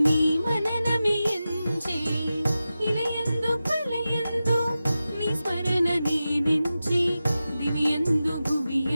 నీ మననమే ఎంచి. ఇలయందు కలయందు నీ స్మరణ నేనెంచి, దివ్యందు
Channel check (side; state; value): both; inverted; correlation -0.93